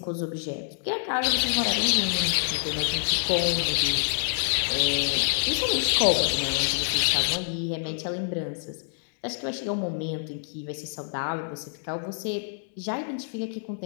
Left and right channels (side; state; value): right; silent; digital silence